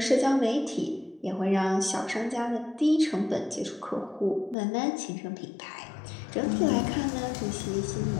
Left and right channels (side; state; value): right; drops out; at 4.5 s